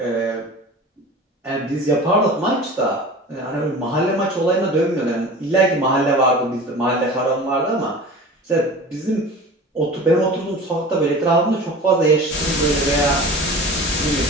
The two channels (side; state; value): both; normal; correlation 0.37